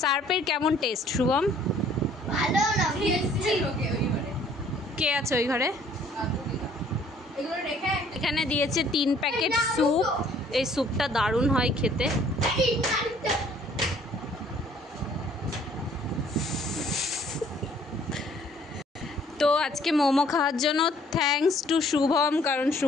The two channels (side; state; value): both; normal; correlation 0.59